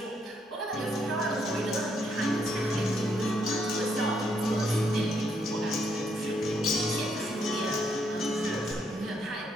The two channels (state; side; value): normal; both; correlation 0.74